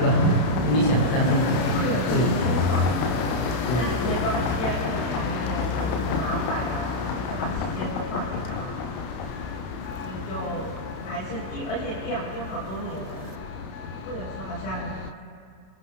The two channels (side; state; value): right; late; 32 ms